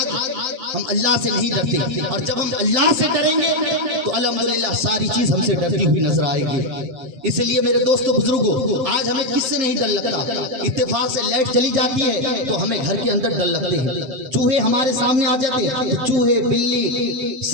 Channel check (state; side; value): late; left; 7.6 ms